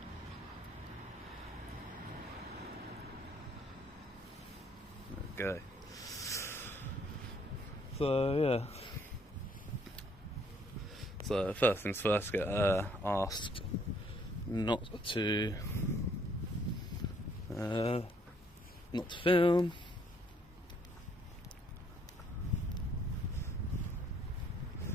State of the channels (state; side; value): normal; both; correlation 0.65